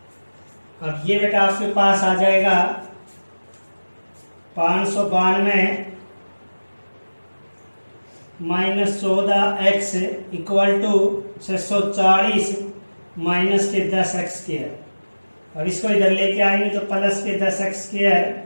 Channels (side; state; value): both; inverted; correlation -1.00